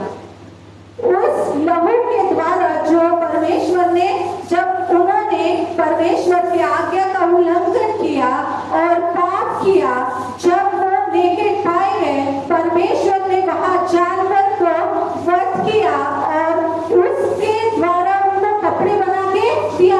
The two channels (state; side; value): identical; both; correlation 1.00